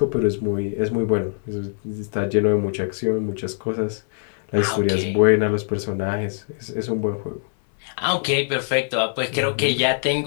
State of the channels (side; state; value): right; silent; 63 dB below the other